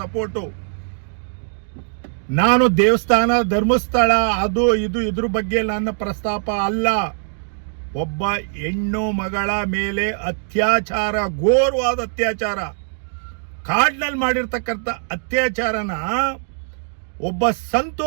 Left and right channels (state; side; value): silent; left; digital silence